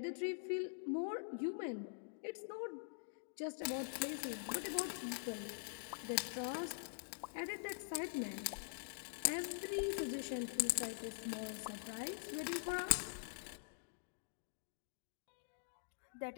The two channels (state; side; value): silent; right; digital silence